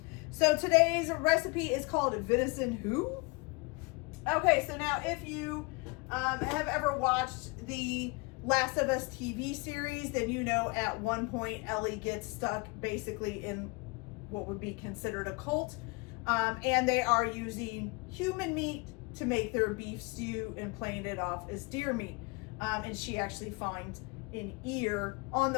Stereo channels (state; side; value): quieter; right; 28.0 dB